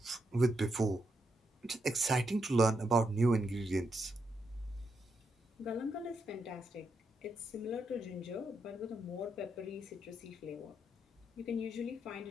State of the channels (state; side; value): normal; both; correlation 0.81